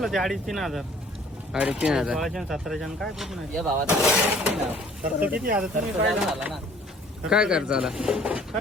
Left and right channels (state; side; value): normal; both; correlation 0.55